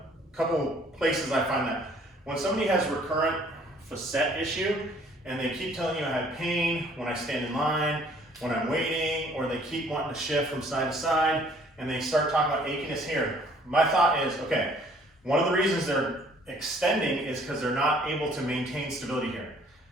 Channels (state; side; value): normal; both; correlation 0.58